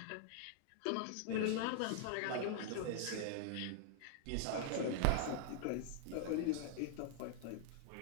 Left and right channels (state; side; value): different; both; correlation 0.00